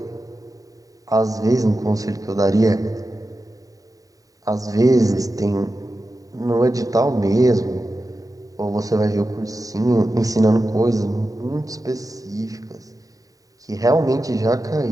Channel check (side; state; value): left; late; 0.17 ms